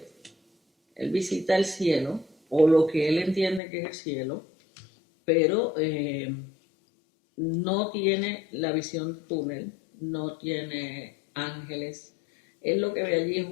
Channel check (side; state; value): right; drops out; at 3.6 s